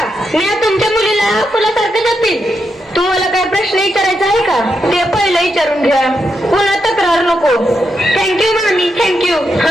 मी तुमच्या मुलीला फुलासारखं जपीन. तुम्हाला काय प्रश्न विचारायचा आहे का? ते पहिलं विचारून घ्या. पुन्हा तक्रार नको. थँक्यू मामी, थँक्यू.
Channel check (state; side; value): normal; both; correlation 0.83